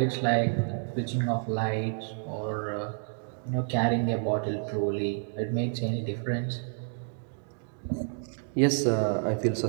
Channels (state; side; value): silent; left; 58 dB below the other